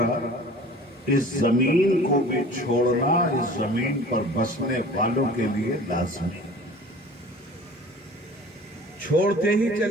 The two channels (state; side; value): normal; both; correlation 0.43